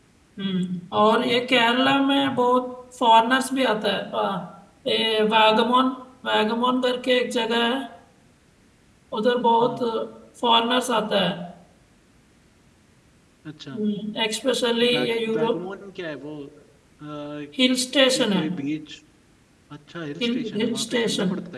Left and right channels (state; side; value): identical; both; correlation 1.00